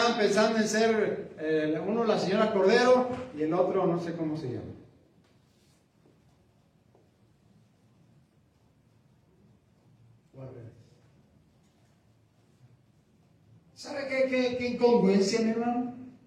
pensando en ser uno la señora Cordero y el otro no sé cómo se llama. ¿Sabe qué incongruencia, mi hermano?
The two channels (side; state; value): both; identical; correlation 1.00